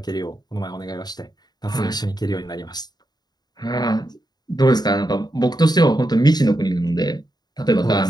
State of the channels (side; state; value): right; late; 0.20 ms